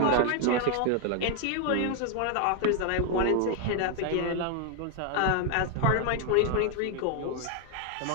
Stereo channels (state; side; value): different; both; correlation 0.00